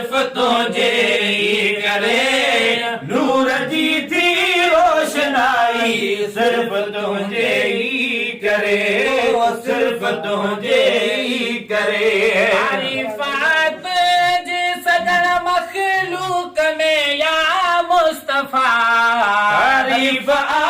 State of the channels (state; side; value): identical; both; correlation 1.00